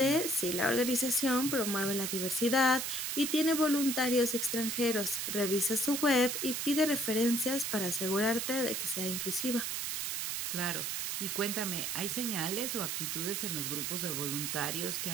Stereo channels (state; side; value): noise; right; hiss, 2 dB below the sound